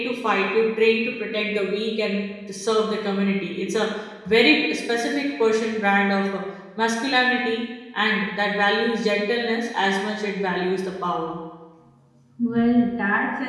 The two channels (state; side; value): identical; both; correlation 1.00